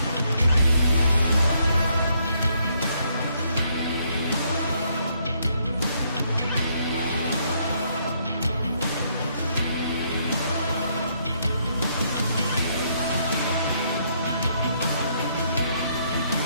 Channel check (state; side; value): inverted; both; correlation -0.72